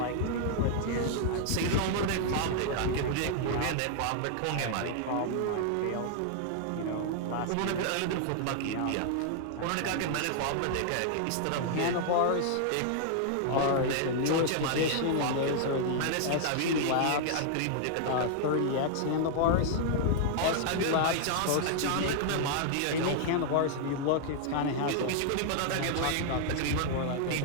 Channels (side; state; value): both; different; correlation 0.00